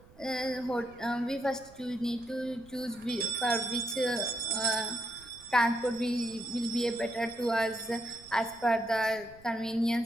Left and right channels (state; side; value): noise; right; rumble, 24 dB below the sound